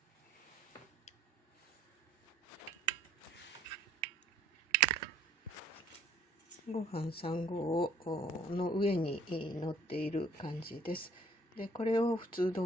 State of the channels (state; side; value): normal; both; correlation 0.57